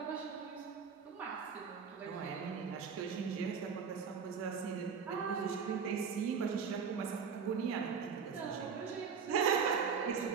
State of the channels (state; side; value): quieter; left; 6.2 dB